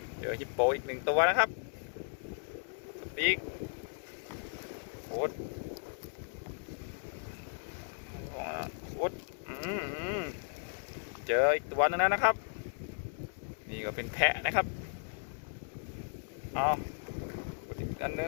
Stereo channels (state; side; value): silent; right; 54 dB below the other